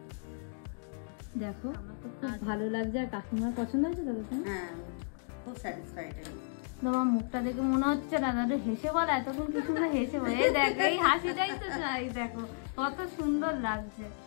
দেখো আমার তো খুব ভালো লাগছে। আর কাকিমার পছন্দ হয়েছে তো? হ্যাঁ, খুব স্যাটিসফাইড। তোমার মুখটা দেখে মনে হচ্ছে না দাদা হেসে বল, এতক্ষণ কিছু না হেসে বল, এই দেখো এই হাসিটাই তো চাই, দেখো কত সুন্দর লাগছে।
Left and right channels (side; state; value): right; silent; digital silence